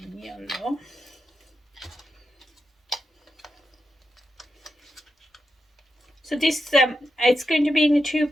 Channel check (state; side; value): normal; both; correlation 0.87